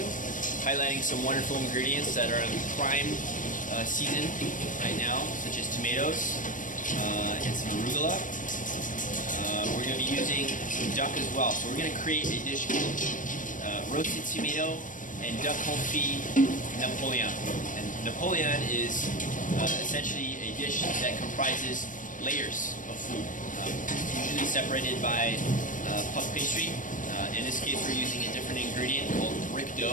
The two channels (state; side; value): late; right; 0.38 ms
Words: highlighting some wonderful ingredients that are in prime season right now, such as tomatoes and some arugula. We're going to be using some duck as well. So we're going to create a dish called roasted tomato and duck confit Napoleon. And Napoleon is essentially a dish that comprises layers of food, usually separated by puff pastry. In this case, we're using a different ingredient called brick